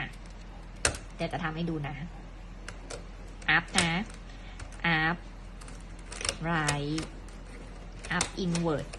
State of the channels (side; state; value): both; identical; correlation 1.00